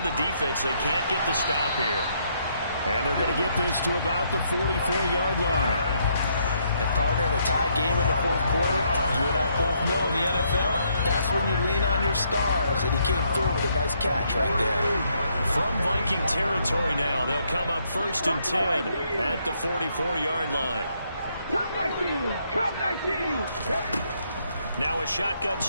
the defense. They can't get the stop here. And they're going to get this to about the 44-yard line. And partner, in a tie game in the 4th quarter, you and I both know in the NFL, that's when you lean on your stars. And he came through with a nice catch right there. From Viking territory now, they'll come up 1st and 10 at the 44-yard line. Come 19. Now a shotgun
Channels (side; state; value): both; inverted; correlation -0.73